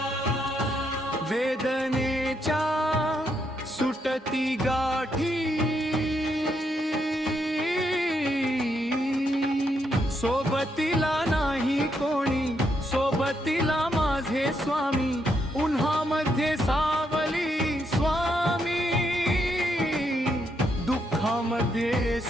वेदनेच्या सुटती गाठी सोबतीला नाही कोणी सोबतीला माझे स्वामी उन्हामध्ये सावली स्वामी दुःखामध्ये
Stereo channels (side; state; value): both; normal; correlation 0.78